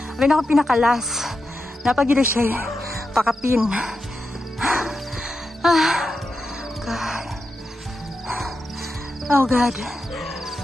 Abay na ako pinakalas. Napagila siya pakapin. God. Oh God.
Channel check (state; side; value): normal; both; correlation 0.88